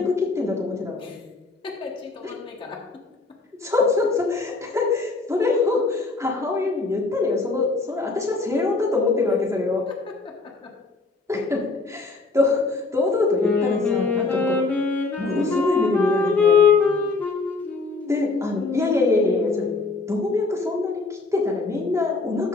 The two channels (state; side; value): quieter; right; 3.7 dB